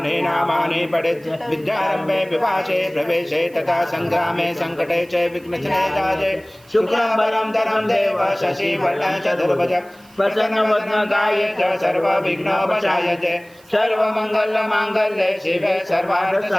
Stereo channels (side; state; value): right; noise; hiss, 28 dB below the sound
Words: नामानि पठेत् विद्यारम्भे विपाशे प्रवेशे तथा संग्रामे संकटे च विघ्नचने दाजे शुक्लाम्बरं धरं देव शशिवर्णं चतुर्भुज प्रसन्नवदनकाये च सर्वविघ्नोपशायते सर्वमङ्गलमाङ्गल्ये शिवे